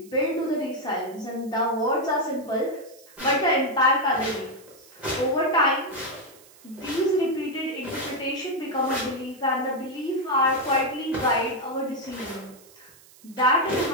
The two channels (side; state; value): right; noise; hiss, 24 dB below the sound